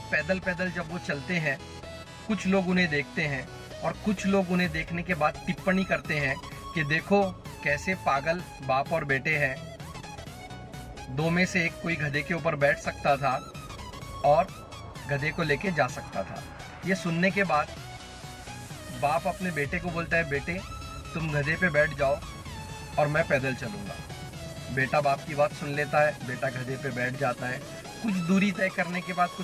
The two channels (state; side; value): identical; both; correlation 1.00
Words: पैदल पैदल जब वो चलते हैं, कुछ लोग उन्हें देखते हैं और कुछ लोग उन्हें देखने के बाद टिप्पणी करते हैं कि देखो कैसे पागल बाप और बेटे हैं। दो में से एक कोई गधे के ऊपर बैठ सकता था और गधे को लेके जा सकता था। ये सुनने के बाद बाप अपने बेटे को बोलता है, बेटे तुम गधे पे बैठ जाओ और मैं पैदल चलूंगा। बेटा बाप की बात सुन लेता है, बेटा गधे पे बैठ जाता है। कुछ दूरी तय करने के बाद,